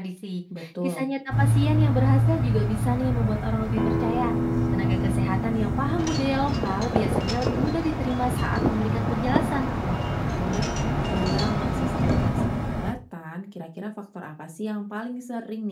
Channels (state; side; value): identical; both; correlation 1.00